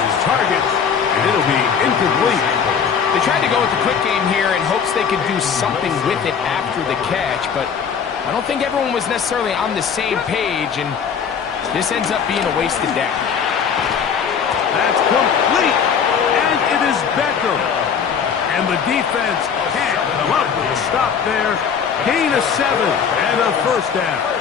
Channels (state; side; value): quieter; right; 6.9 dB